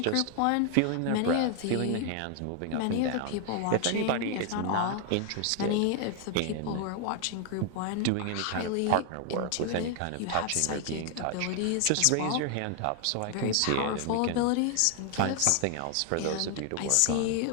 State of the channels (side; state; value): both; different; correlation 0.01